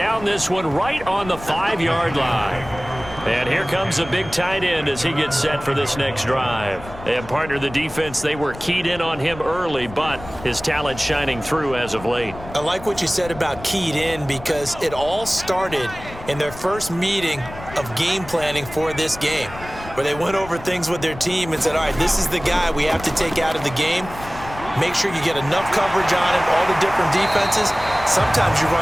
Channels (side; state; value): left; noise; rumble, 15 dB below the sound